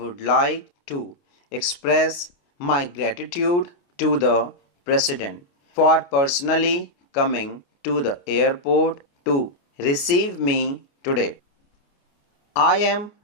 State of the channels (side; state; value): right; late; 28 ms